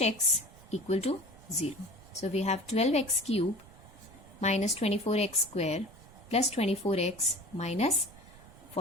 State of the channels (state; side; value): noise; right; rumble, 21 dB below the sound